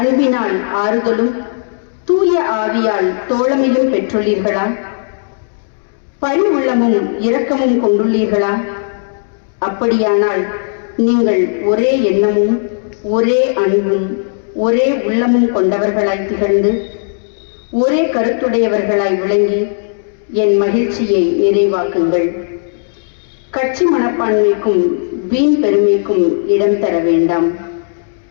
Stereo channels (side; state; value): right; silent; digital silence